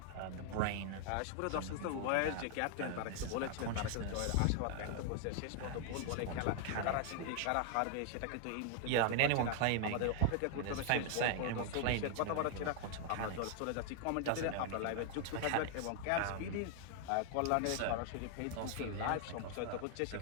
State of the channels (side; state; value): both; different; correlation 0.00